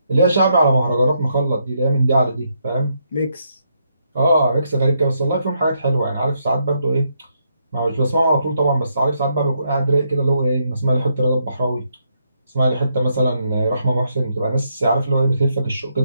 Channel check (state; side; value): inverted; both; correlation -0.77